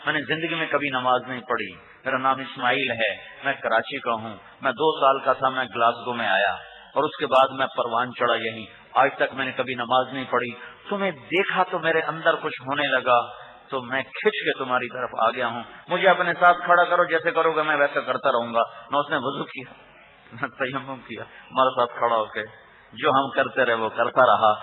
میں نے زندگی میں کبھی نماز نہیں پڑھی. میرا نام اسماعیل ہے، میں کراچی کا ہوں. میں 2 سال کا تھا، میں گلاسگو میں آیا اور اس کے بعد میں پروان چڑھا یہیں. آج تک میں نے کبھی نماز نہیں پڑھی. تمہیں دیکھا تو میرے اندر کچھ ہونے لگا، تو میں کھچ کے تمہاری طرف آ گیا ہوں. مجھے اپنے ساتھ کھڑا کرو، جیسے کرو گے میں ویسا کرتا رہوں گا. نہ اس نے وضو کیا نہ تیمم کیا، ہمارے ساتھ کھڑا ہو کے جو ہم کرتے رہے وہ کرتا رہا.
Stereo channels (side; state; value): both; identical; correlation 1.00